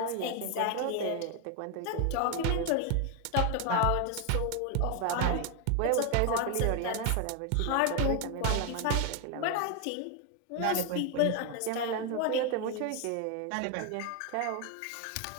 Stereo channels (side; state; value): both; different; correlation 0.01